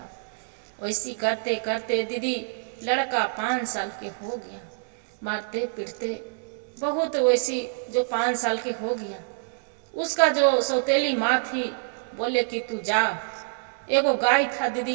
वैसी करते करते दीदी लड़का 5 साल के हो गया, मारते पीटते बहुत। वैसी जो 5 साल के हो गया, उसका जो सौतेली माँ थी बोले कि तू जा। एगो गाय था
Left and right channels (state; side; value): silent; left; digital silence